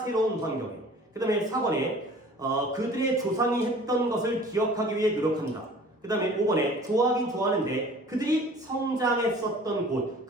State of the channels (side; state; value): both; normal; correlation 0.47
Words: 환경에. 그 다음에 4번에 그들의 조상이 했던 것을 기억하기 위해 노력한다. 그 다음에 5번에 좋아하긴 좋아하는데 그들이 성장했었던 곳